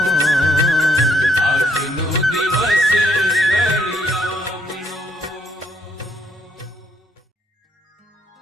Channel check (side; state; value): both; normal; correlation 0.71